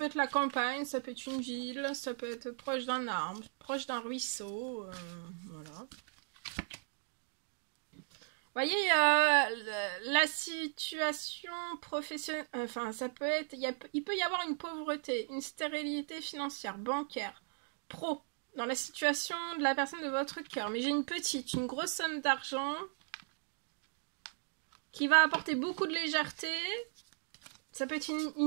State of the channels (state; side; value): silent; left; 53 dB below the other